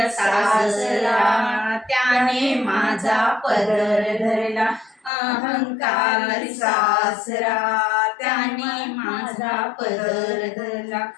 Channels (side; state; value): right; drops out; at 5.1 s